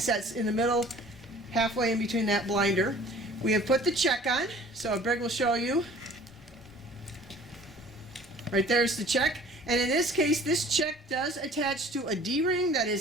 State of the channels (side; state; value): both; normal; correlation 0.49